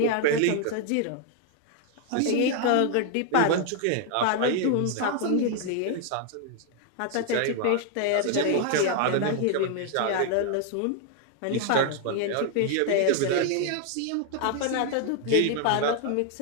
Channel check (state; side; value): different; both; correlation 0.00